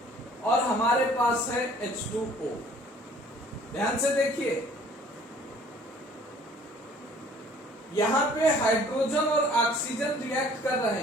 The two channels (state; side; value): normal; both; correlation 0.54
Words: और हमारे पास है H2O। ध्यान से देखिए, यहां पे हाइड्रोजन और ऑक्सीजन रिएक्ट कर रहे